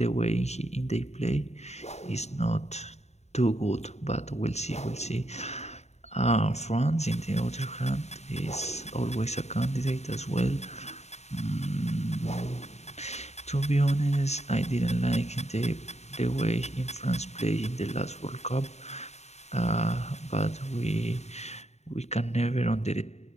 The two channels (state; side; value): late; right; 0.32 ms